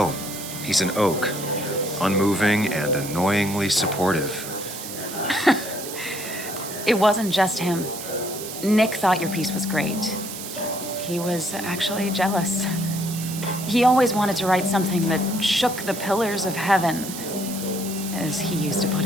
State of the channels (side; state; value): right; noise; hiss, 9 dB below the sound